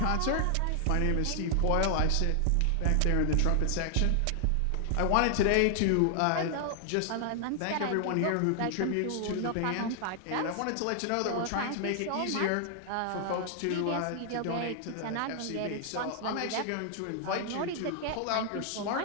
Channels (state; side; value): different; both; correlation 0.00